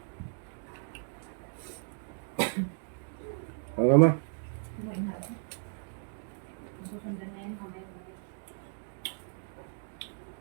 Mama. Kumain na. Susundan na yan. Mamaya.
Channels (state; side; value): silent; left; 55 dB below the other